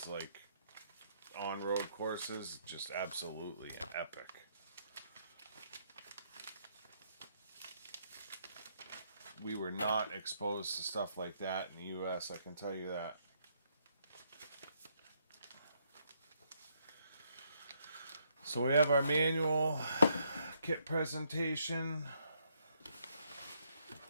like on-road courses, just absolutely epic. We were not exposed to stuff like that in the US, I can tell you that. So we have our manual kit presentation.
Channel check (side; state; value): both; inverted; correlation -0.72